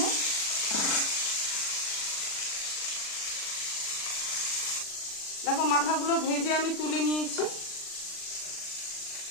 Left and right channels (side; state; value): right; late; 39 ms